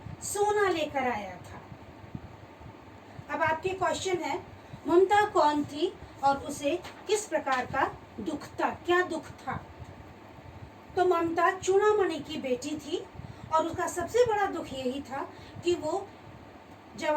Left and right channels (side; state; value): both; identical; correlation 1.00